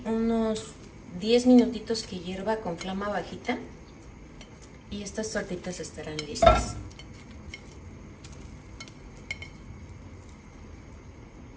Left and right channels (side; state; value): both; identical; correlation 1.00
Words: unos 10 minutitos que hierva con flama bajita. Y estas tortitas estarán listas.